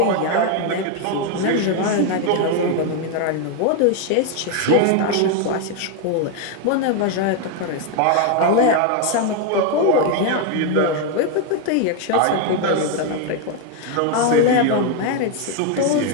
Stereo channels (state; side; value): different; both; correlation 0.01